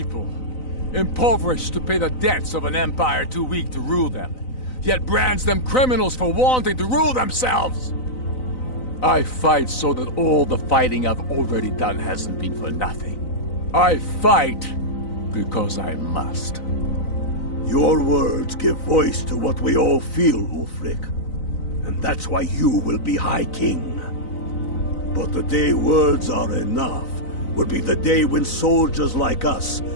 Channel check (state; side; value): late; right; 3.9 ms